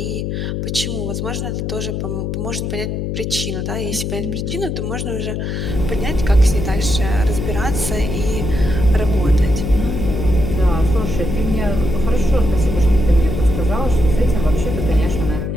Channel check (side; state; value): left; noise; hum, 3 dB below the sound